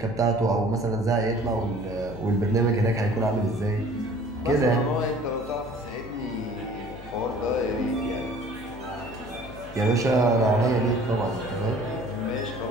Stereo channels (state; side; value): noise; left; hum, 16 dB below the sound